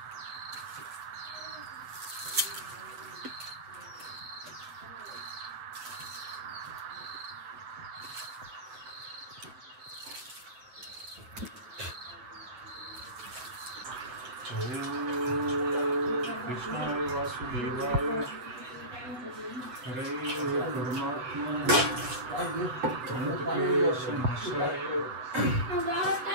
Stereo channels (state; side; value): late; left; 7.9 ms